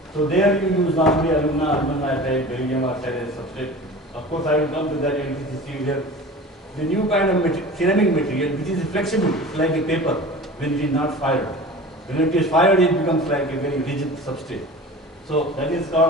So there you use normally alumina, aluminum nitride, barium oxide as substrate. Of course, I will come to that in here. The new kind of ceramic material which is flexible, like a paper when it is not fired. When it is fired, it becomes like a very rigid substrate. So that is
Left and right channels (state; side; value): normal; both; correlation 0.38